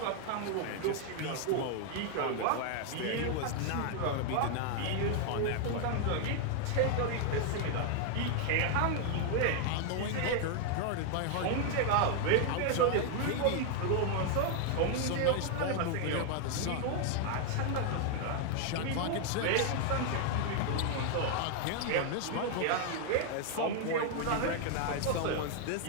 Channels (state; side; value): different; both; correlation 0.00